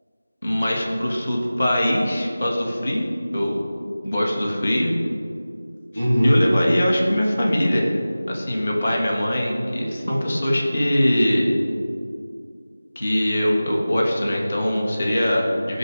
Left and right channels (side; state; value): both; inverted; correlation -0.97